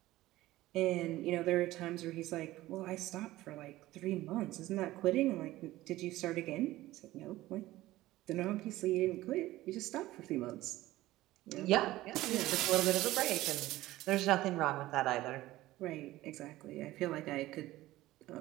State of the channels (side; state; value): left; quieter; 16.7 dB